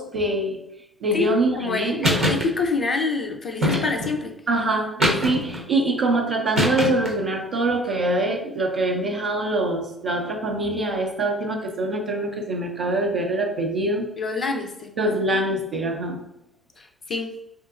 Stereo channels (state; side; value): normal; both; correlation 0.46